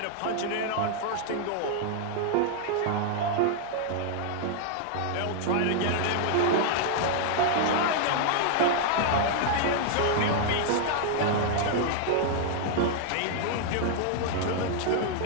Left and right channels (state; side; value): different; both; correlation 0.00